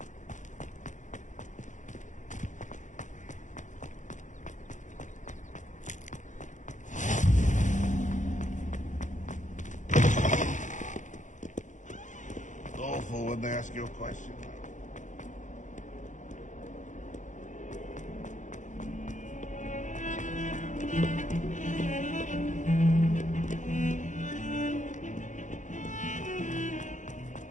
Awful when they ask you a question.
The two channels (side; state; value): right; late; 0.36 ms